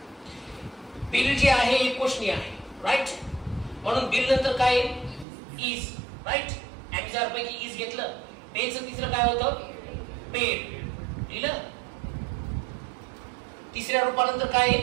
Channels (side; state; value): left; drops out; at 5.2 s